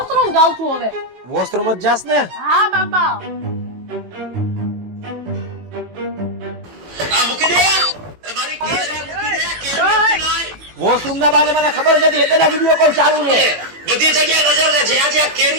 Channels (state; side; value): late; left; 18 ms